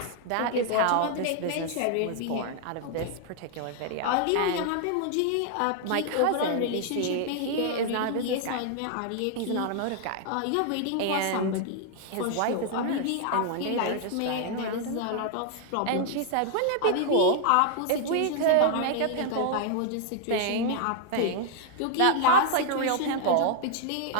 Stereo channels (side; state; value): both; different; correlation 0.00